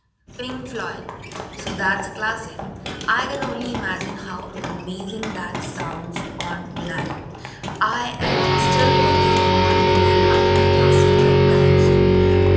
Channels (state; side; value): identical; both; correlation 1.00